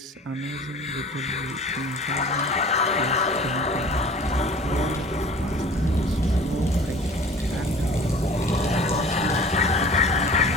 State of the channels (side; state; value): both; normal; correlation 0.45